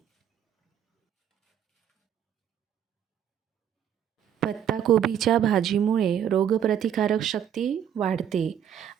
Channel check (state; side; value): quieter; left; 9.4 dB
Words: पत्ताकोबीच्या भाजीमुळे रोगप्रतिकारक शक्ती वाढते